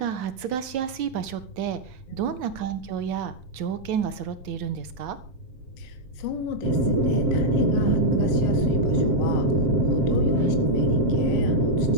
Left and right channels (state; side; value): late; left; 7.6 ms